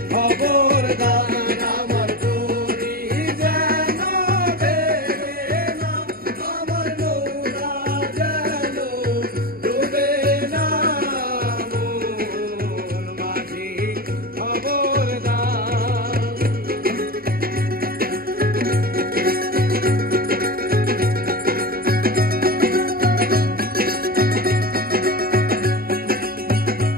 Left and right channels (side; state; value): left; late; 0.43 ms